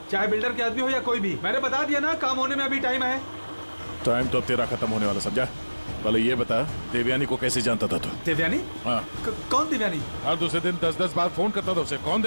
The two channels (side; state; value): both; inverted; correlation -1.00